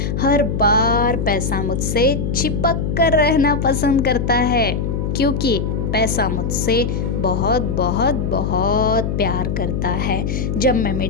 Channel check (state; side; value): noise; left; hum, 1 dB below the sound